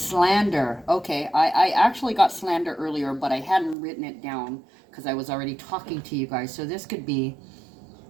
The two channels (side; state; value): left; drops out; at 3.8 s